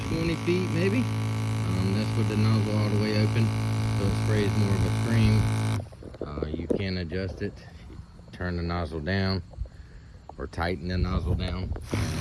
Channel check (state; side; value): identical; both; correlation 1.00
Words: feet maybe. That's with the nozzle all the way open, so it sprays more of a stream. You can adjust it, turn the nozzle down or tighten the nozzle down,